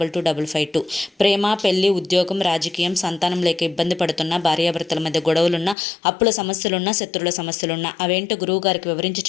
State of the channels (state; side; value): drops out; right; at 5.8 s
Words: ప్రేమ, పెళ్లి, ఉద్యోగం, రాజకీయం, సంతానం లేక ఇబ్బంది పడుతున్న భార్యాభర్తల మధ్య గొడవలున్నా, అప్పుల సమస్యలున్నా, శత్రువుల సమస్యలున్నా అవేంటో గురువు గారికి వివరించి